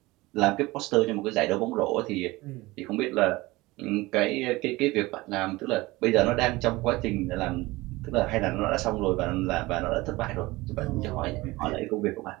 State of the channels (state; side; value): quieter; left; 20.6 dB